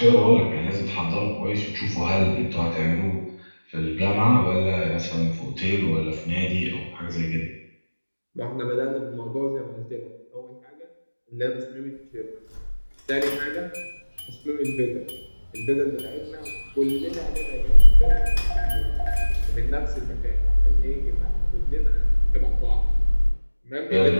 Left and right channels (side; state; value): both; inverted; correlation -1.00